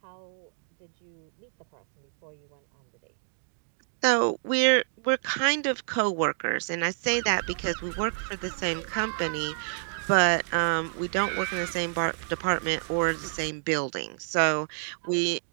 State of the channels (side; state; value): left; silent; digital silence